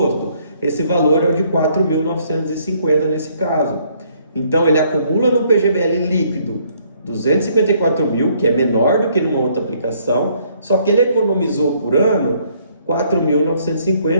Esse valor é o de 4.950 nesse caso. Então ele acumula no PGBL líquido 254 mil, que é menor do que numa outra aplicação, só que ele economizou por ano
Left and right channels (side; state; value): both; inverted; correlation -0.66